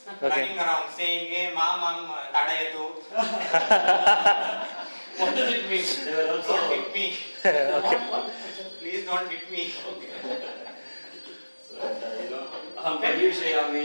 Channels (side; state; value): both; inverted; correlation -1.00